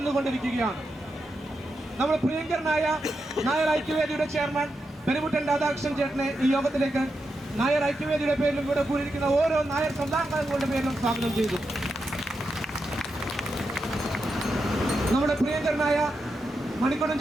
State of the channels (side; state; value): both; normal; correlation 0.86